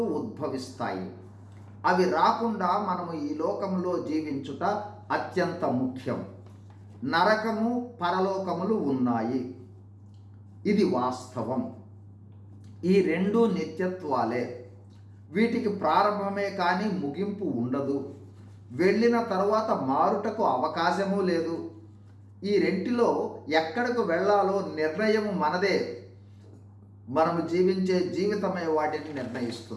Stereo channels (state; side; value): identical; both; correlation 1.00